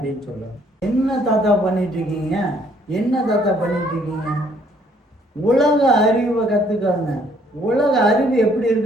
சொல்லுவேன். என்ன தாத்தா பண்ணிட்டு இருக்கீங்க? உலக அறிவை கத்துக்காங்க. உலக அறிவு எப்படி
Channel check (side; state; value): both; normal; correlation 0.64